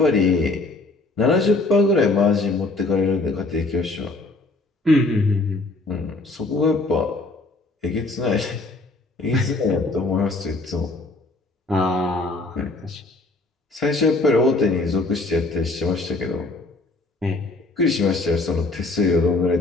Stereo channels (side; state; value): right; quieter; 3.2 dB